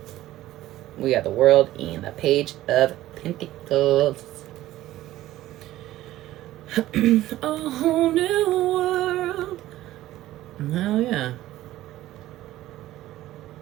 we got the world in the Page of Pentacles. A whole new world. Hell yeah.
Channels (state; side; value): quieter; left; 15.0 dB